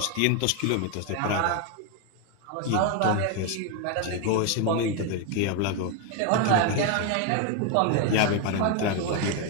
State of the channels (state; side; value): different; both; correlation 0.01